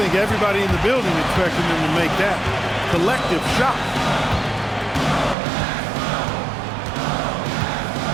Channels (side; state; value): left; drops out; at 5.4 s